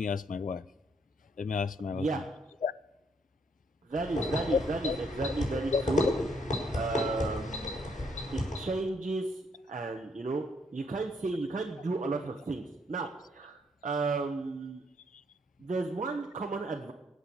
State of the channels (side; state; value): both; normal; correlation 0.71